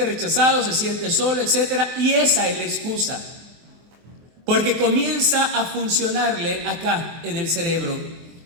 rechazado, se siente solo, etc. Y esa es la excusa, porque comienza a funcionarle acá en el cerebro,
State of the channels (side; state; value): left; late; 23 ms